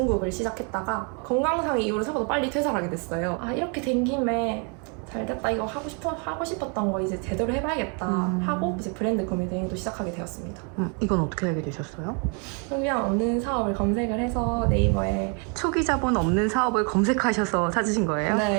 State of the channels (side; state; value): left; quieter; 36.8 dB